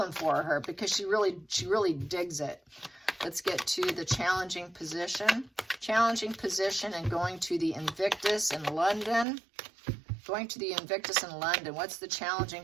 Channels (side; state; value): left; drops out; at 9.2 s